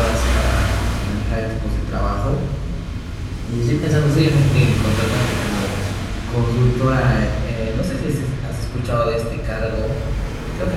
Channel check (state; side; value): identical; both; correlation 1.00